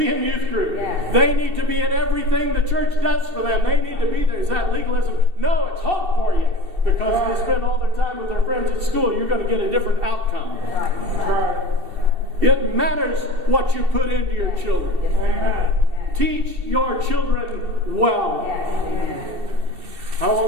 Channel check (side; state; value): left; late; 2.7 ms